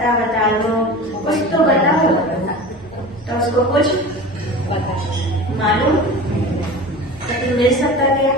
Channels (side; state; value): both; normal; correlation 0.34